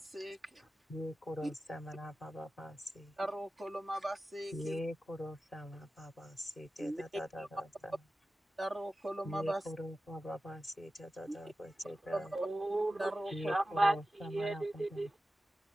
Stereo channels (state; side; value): normal; both; correlation 0.94